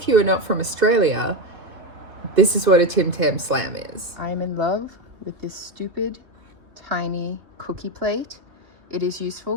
you are not from Australia, this is what a Tim Tam Slam is. I'm in love with this stupid tiny cookie plate. It is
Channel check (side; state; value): left; late; 2.9 ms